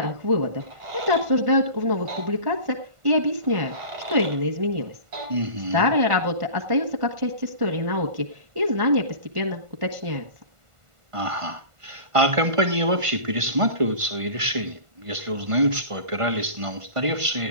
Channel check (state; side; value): late; left; 1.5 ms